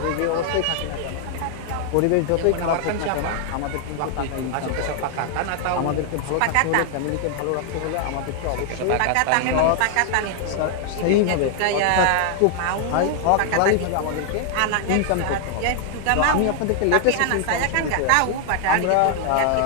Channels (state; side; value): different; both; correlation 0.00